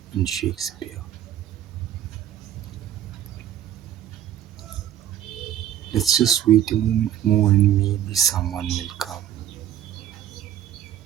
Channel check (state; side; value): quieter; left; 11.2 dB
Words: in Shakespeare. Let's just wait a moment more and maybe someone will come.